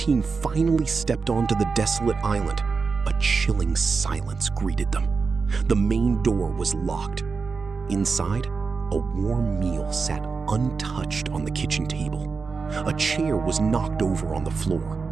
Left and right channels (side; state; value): left; quieter; 4.8 dB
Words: finally stepped onto the desolate island, a chilling silence greeted them. The main door was locked. Inside, a warm meal sat untouched on the kitchen table. A chair was knocked over on the